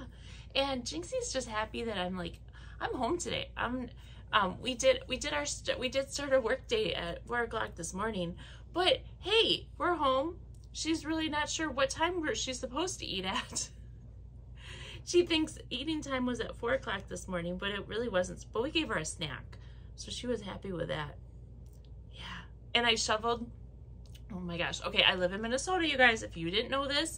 And Jinxie's just happy that I'm home today. We did start our work day at 4 o'clock this morning, but hey, we're home. She's really not sure what time she's supposed to eat at. She thinks eating time was at 4 o'clock this morning, but it really wasn't. But we gave her a snack, so she was happy with that. Yeah, and I shoveled. Oh my gosh. Okay, I live in Minnesota, you guys. If you didn't know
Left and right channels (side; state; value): both; identical; correlation 1.00